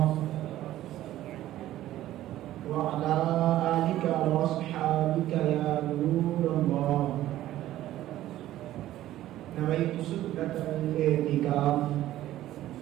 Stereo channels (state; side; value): quieter; left; 14.0 dB